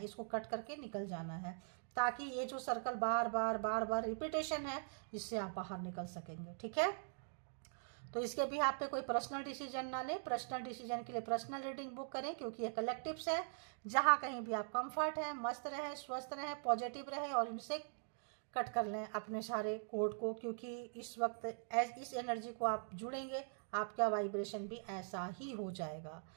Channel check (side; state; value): left; silent; digital silence